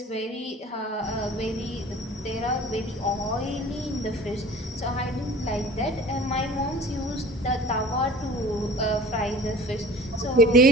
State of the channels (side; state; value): both; normal; correlation 0.43